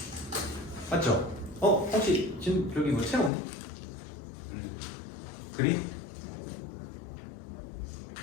맞죠? 혹시 지금 저기 뭐 채우니? 그림?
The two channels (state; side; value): drops out; right; at 3.3 s